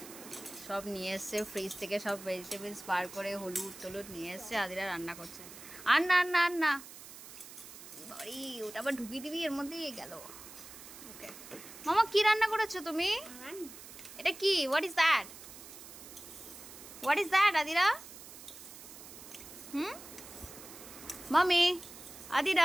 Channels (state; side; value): noise; right; hiss, 15 dB below the sound